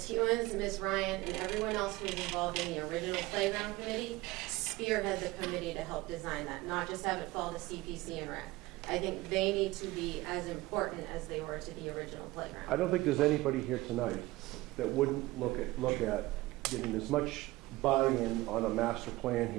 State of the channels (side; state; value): left; quieter; 19.5 dB